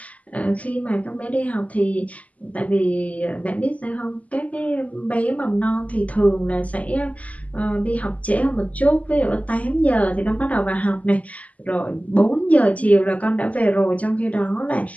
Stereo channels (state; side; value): late; right; 0.071 ms